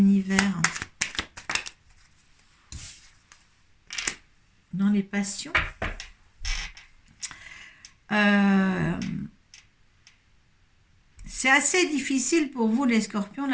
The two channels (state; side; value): identical; both; correlation 1.00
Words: Dans les passions. C'est assez difficile pour vous les scorpions